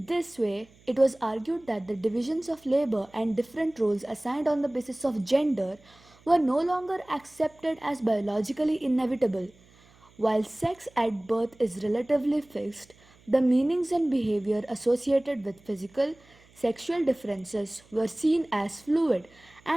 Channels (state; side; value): noise; right; hum, 28 dB below the sound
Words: this way, it was argued that the divisions of labor and different roles assigned on the basis of gender were no longer accepted as biologically inevitable. While sex at birth is relatively fixed, the meanings and behavior associated with physical, sexual differences were seen as fluid